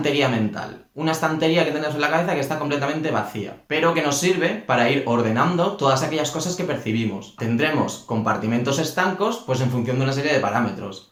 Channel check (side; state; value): both; identical; correlation 1.00